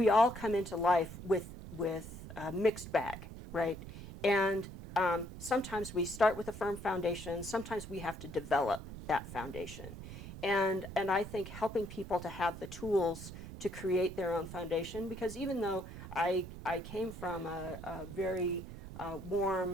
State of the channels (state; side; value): noise; right; rumble, 11 dB below the sound